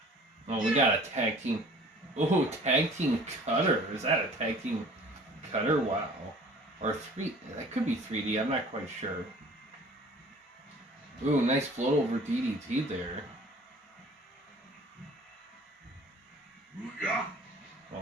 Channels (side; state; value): both; normal; correlation 0.48